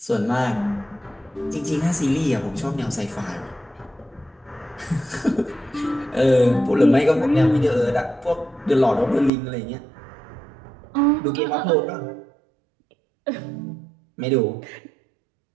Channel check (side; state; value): left; drops out; at 9.3 s